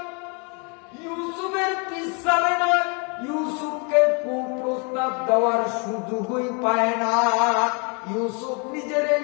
ইউসুফের পিছনে না, ইউসুফকে কুপ্রস্তাব দেওয়ার সুযোগই পায় না। ইউসুফ নিজের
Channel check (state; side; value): quieter; right; 34.5 dB